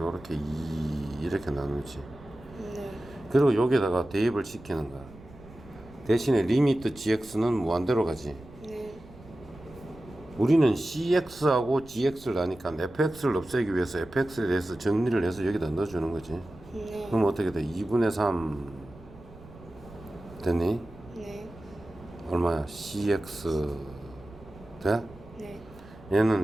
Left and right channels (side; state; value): right; noise; rumble, 20 dB below the sound